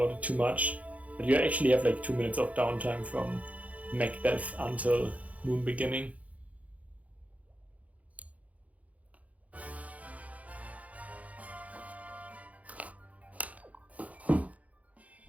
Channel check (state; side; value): late; left; 0.069 ms